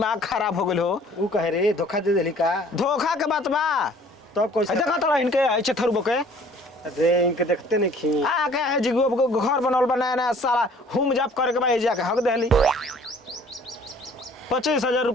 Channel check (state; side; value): normal; both; correlation 0.54